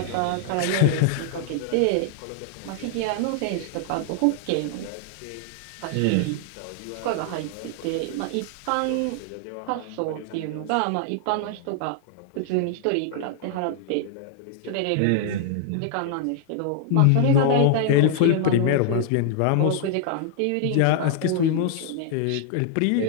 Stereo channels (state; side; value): different; both; correlation -0.01